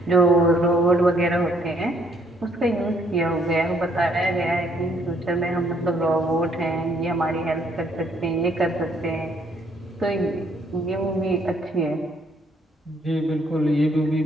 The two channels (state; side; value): normal; both; correlation 0.67